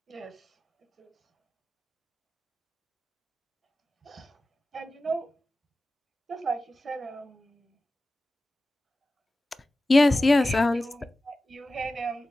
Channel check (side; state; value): both; normal; correlation 0.95